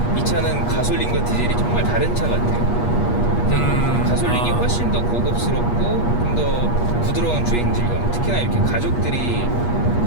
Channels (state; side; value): late; right; 8.4 ms